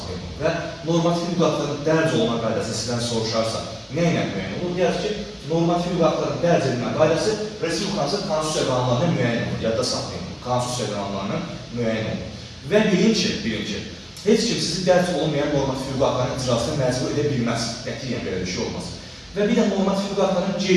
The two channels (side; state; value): both; identical; correlation 1.00